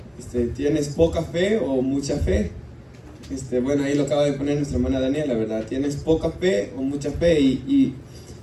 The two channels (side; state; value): both; identical; correlation 1.00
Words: ¿tienes poca fe o mucha fe? Bueno, ahí lo acaba de poner nuestra hermana Daniela, ¿verdad? ¿Tienes poca fe o mucha fe? Y